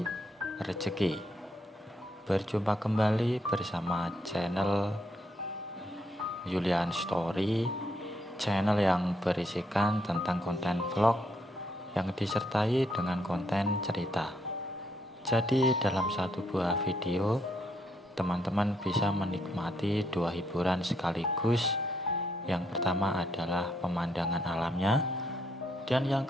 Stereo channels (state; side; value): normal; both; correlation 0.75